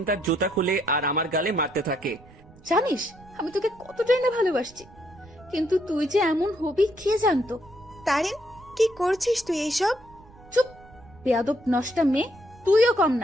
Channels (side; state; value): right; noise; rumble, 23 dB below the sound